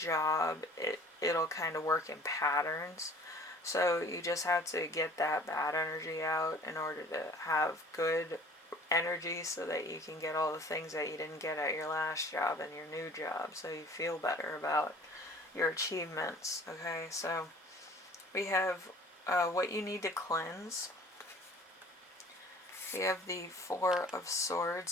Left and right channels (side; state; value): both; normal; correlation 0.49